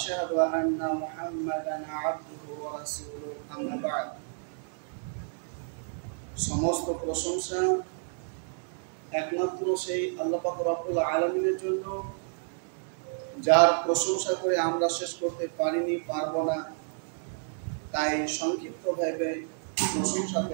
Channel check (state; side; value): silent; left; 58 dB below the other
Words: أن محمدا عبده ورسوله أما بعد সমস্ত প্রশংসা একমাত্র সেই আল্লাহ পাক রব্বুল আলামিনের জন্য, যার প্রশংসা করে আমরা শেষ করতে পারিনি, পারবো না। তাই সংক্ষিপ্তভাবে প্রশংসা